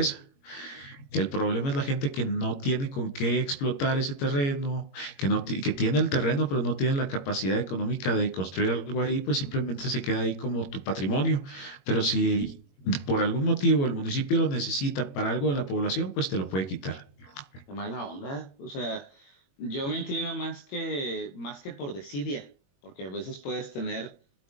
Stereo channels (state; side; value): late; right; 21 ms